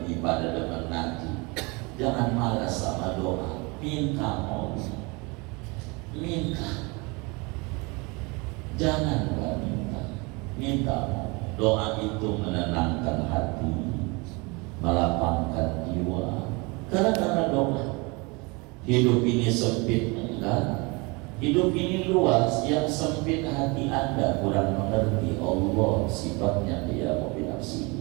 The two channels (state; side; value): quieter; left; 27.6 dB